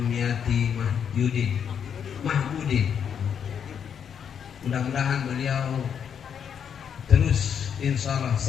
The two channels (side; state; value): right; quieter; 7.8 dB